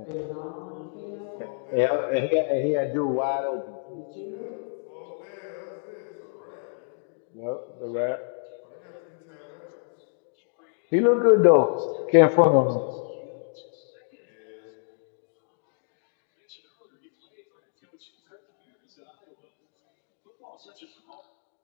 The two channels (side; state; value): right; silent; digital silence